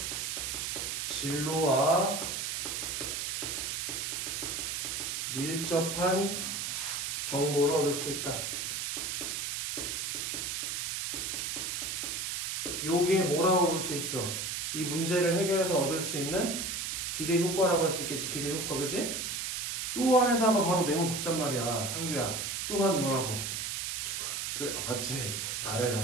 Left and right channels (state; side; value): noise; right; hiss, 2 dB below the sound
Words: 진로와 밀접한 정보를 얻을 수 있다. 요게 뭐라고 볼 수 있어? 이 문제를 해결해서 얻을 수 있는 기대 효과라고 할 수 있겠지. 기대 효과, 그치? 또 안에다가 바로 내놓은 덕잔 말이야. 상규야. 또한 뭐라고? 죽어. 그래 맞지?